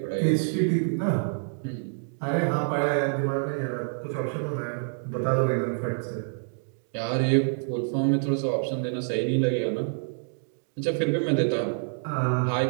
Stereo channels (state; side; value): silent; left; digital silence